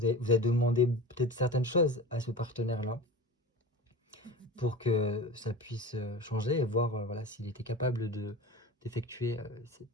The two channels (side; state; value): both; normal; correlation 0.33